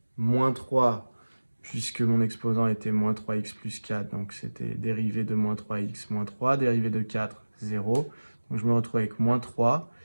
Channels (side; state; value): both; inverted; correlation -1.00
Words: moins 3, puisque mon exposant était moins 3x plus 4. Donc, c'était dérivée de moins 3x moins 3, dérivée de 4, 0. Donc, je me retrouve avec moins 3